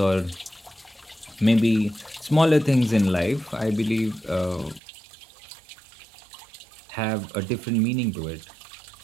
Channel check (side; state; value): left; drops out; at 4.8 s